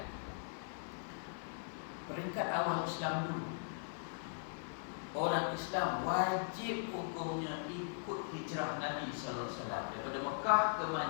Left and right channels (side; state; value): right; silent; 51 dB below the other